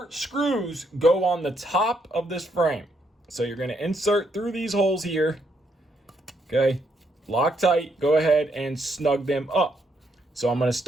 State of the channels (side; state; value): both; normal; correlation 0.75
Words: screws go on the top of this frame. So you're gonna insert through these holes here, okay? Loctite, go ahead and snug them up. So I'm gonna